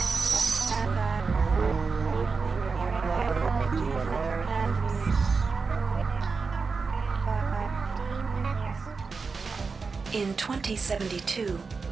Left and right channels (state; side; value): quieter; left; 4.7 dB